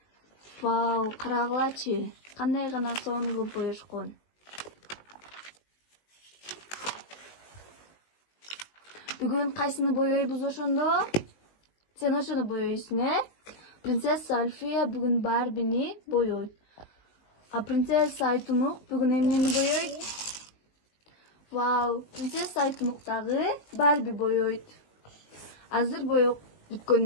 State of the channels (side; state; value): right; late; 19 ms